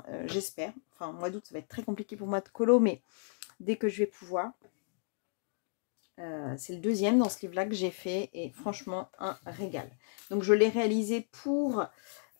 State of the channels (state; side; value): silent; right; digital silence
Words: j'espère. Enfin, mois d'août, ça va être très compliqué pour moi de colo, mais dès que je vais pouvoir. C'est le deuxième dans ce livre-là que j'ai fait et franchement, un régal. Donc, je l'ai réalisé pour